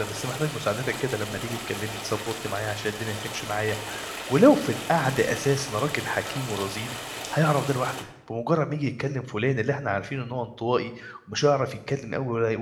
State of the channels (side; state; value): both; identical; correlation 1.00